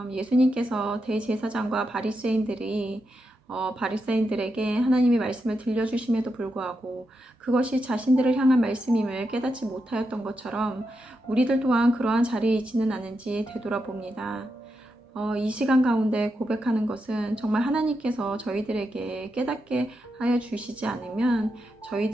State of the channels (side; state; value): both; normal; correlation 0.86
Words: 예수님께서 대제사장과 바리새인들에게 하나님의 말씀을 들려주심에도 불구하고 그것이 자신들을 향한 말씀임을 깨닫지 못하였던 것처럼 우리들 또한 그러한 자리에 있지는 않은지 되돌아봅니다. 이 시간 가운데 고백하는 것은 정말 하나님께서 저희들에게 깨닫게 하여 주시지 않으면